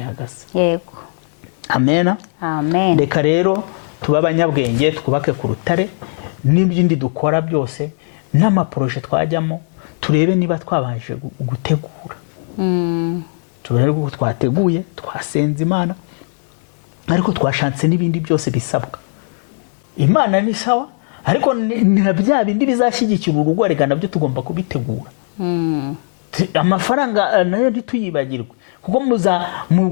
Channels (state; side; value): silent; right; digital silence